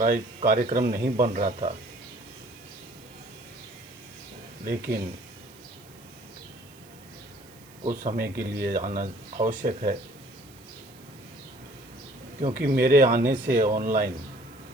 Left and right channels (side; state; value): right; noise; hiss, 25 dB below the sound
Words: नहीं बन रहा था, लेकिन कुछ समय के लिए आना आवश्यक है, क्योंकि मेरे आने से ऑनलाइन